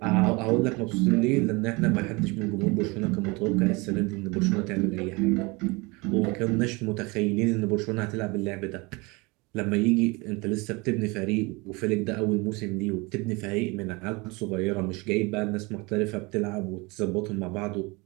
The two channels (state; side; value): quieter; left; 26.0 dB